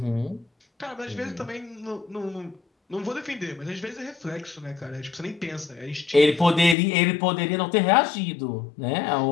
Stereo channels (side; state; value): right; drops out; at 6.8 s